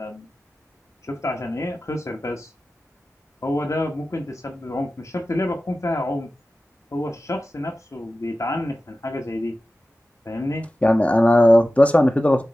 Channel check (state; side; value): normal; both; correlation 0.95